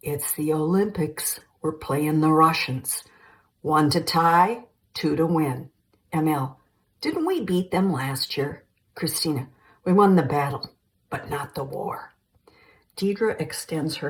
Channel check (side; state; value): both; identical; correlation 1.00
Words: it's the Olympics. We're playing the Russians. 1 to tie, 2 to win. ML, didn't we beat them last year? Christina, we won the battle, but not the war. Deidre extends